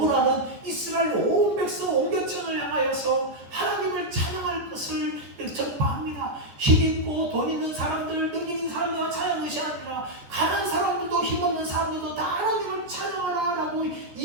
이스라엘 온 백성 온 계층을 향하여서 하나님을 찬양할 것을 전파합니다. 힘있고 돈 있는 사람들, 능력 있는 사람들만 찬양하는 것이 아니라 가난한 사람들도 힘없는 사람들도 다 하나님을 찬양하라 라고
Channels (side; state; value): left; late; 14 ms